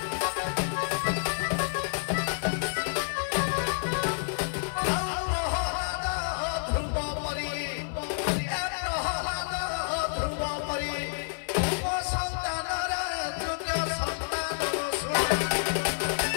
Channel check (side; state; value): right; silent; 59 dB below the other